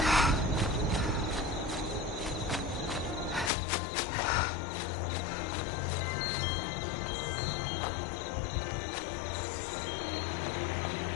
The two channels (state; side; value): drops out; right; at 3.5 s